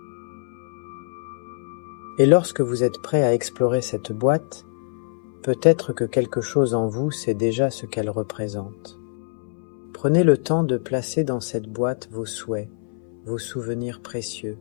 Et lorsque vous êtes prêt à explorer cette boîte, peut-être que quelque chose en vous sait déjà ce qu'elle représente. Prenez le temps de placer dans cette boîte vos souhaits, vos souvenirs précieux,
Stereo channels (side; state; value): right; silent; 62 dB below the other